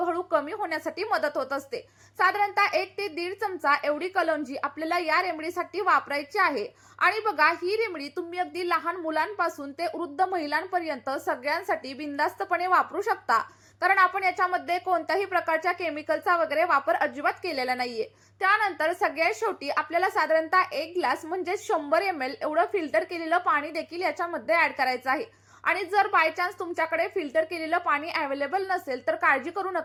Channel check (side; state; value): both; identical; correlation 1.00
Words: कमी होण्यासाठी मदत होत असते. साधारणतः 1 ते 1.5 चमचा एवढी कलौंजी आपल्याला या रेमेडीसाठी वापरायची आहे. आणि बघा, ही रेमेडी तुम्ही अगदी लहान मुलांपासून ते वृद्ध महिलांपर्यंत सगळ्यांसाठी बिनधास्तपणे वापरू शकता. कारण आपण याच्यामध्ये कोणत्याही प्रकारच्या केमिकलचा वगैरे वापर अजिबात केलेला नाहीये. त्यानंतर सगळ्यात शेवटी आपल्याला साधारणतः 1 ग्लास म्हणजे 100 ml एवढं फिल्टर केलेलं पाणी देखील याच्यामध्ये ऍड करायचं आहे. आणि जर बाय चान्स तुमच्याकडे फिल्टर केलेलं पाणी अवेलेबल नसेल तर काळजी करू